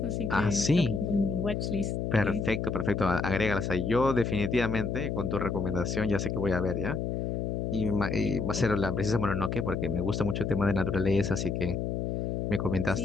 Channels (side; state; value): left; noise; hum, 2 dB below the sound